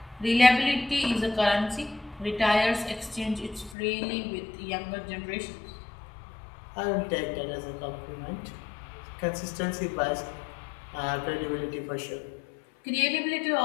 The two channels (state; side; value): drops out; right; at 3.8 s